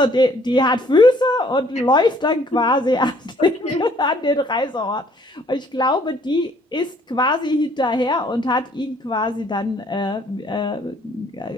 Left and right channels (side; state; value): both; normal; correlation 0.61